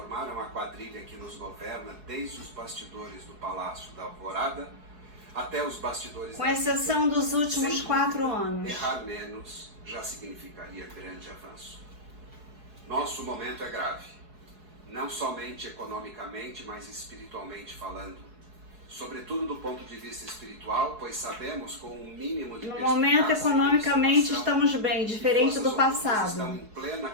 a quadrilha que nos governa desde os bastidores do Palácio da Alvorada até os bastidores... Com exceção dos últimos 4 anos. Errar menos já significaria grande avanço. Nosso momento é grave. Não somente economicamente, mas espiritualmente falando. Sobretudo do ponto de vista espiritual, pois sabemos com um mínimo de no momento, economicamente, estamos bem, diferente do passado. Estão em plena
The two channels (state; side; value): late; left; 4.7 ms